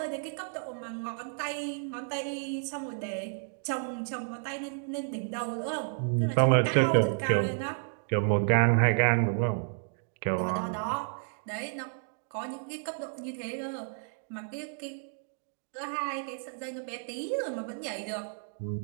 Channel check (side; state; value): left; silent; digital silence